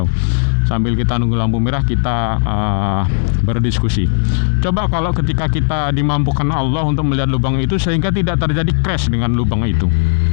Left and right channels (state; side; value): silent; right; digital silence